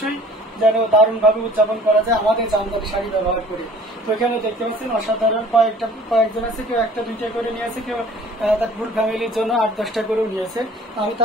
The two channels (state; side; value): normal; both; correlation 0.50